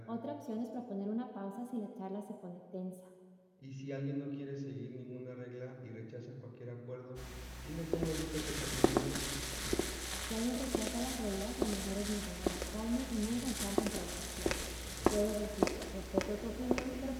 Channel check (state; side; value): identical; both; correlation 1.00